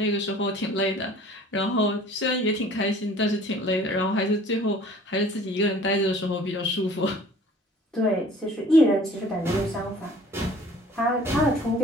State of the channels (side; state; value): both; normal; correlation 0.50